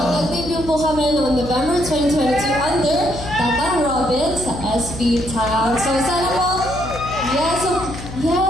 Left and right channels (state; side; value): noise; left; hum, 11 dB below the sound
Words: Nag-debut po kami noong November 2022 under Tatang Robin sa SB Town. So sana po, yes,